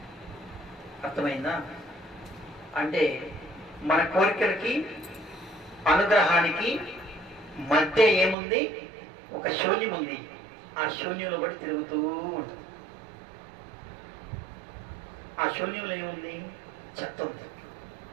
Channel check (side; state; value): left; drops out; at 8.3 s